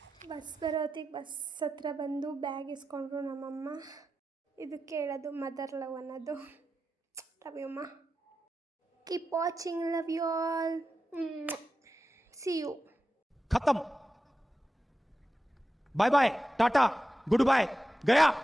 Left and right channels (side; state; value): both; normal; correlation 0.91